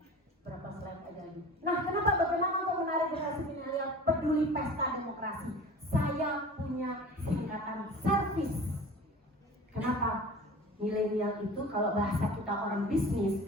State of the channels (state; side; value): normal; both; correlation 0.40